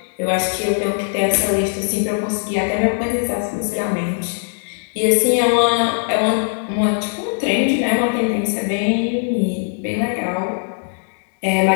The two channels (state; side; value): silent; right; digital silence